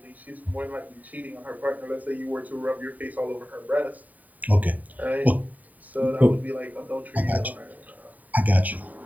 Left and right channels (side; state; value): left; late; 0.076 ms